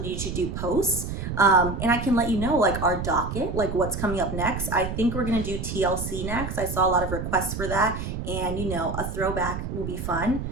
to do posts. And I can let you know like our docket, like what's coming up next. I think we're going to do TLC next. I saw a lot of requests for that, and a throwback will be fun.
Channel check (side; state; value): right; noise; rumble, 5 dB below the sound